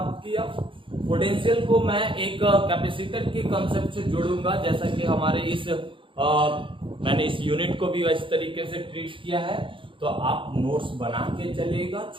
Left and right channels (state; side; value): late; left; 0.25 ms